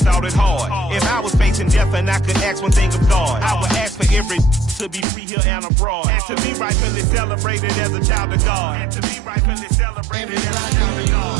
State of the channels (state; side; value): drops out; left; at 5.1 s